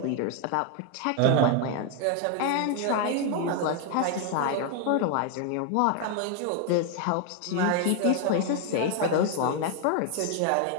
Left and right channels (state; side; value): different; both; correlation 0.01